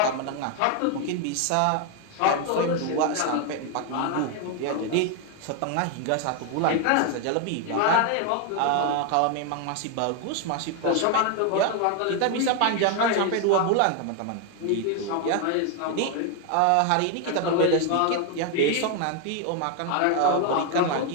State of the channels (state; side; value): different; both; correlation 0.01